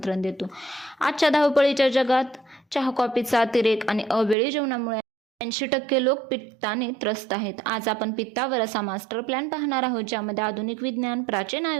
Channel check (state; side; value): drops out; left; at 4.4 s